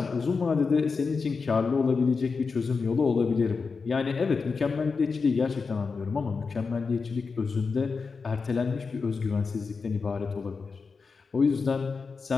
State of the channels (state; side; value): quieter; right; 4.8 dB